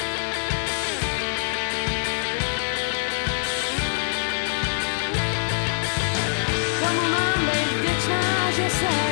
Komu mám být vděčná, že se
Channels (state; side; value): silent; right; digital silence